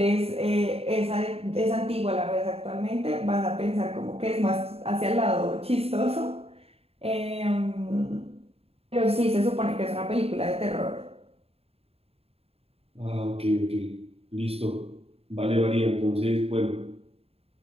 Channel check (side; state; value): left; late; 0.29 ms